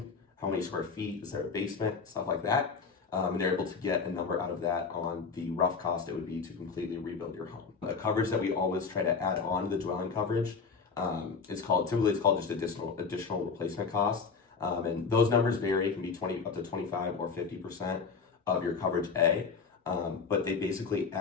how many square feet, is there a basement, stuff like that. And they're able to get a number out of that on the rough cost it would be to completely rebuild your home. A coverage that we always try to add on to the dwelling coverage, it's called just additional replacement cost. And those numbers vary. It can be up to 25 or 50% of your coverage A. But they basically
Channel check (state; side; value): quieter; right; 5.2 dB